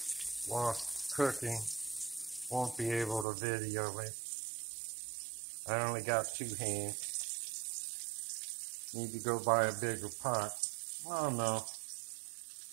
while cooking. Won't be able to video it. I only got 2 hands. Need to go buy a bigger pot. Oh no,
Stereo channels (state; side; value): drops out; left; at 3.2 s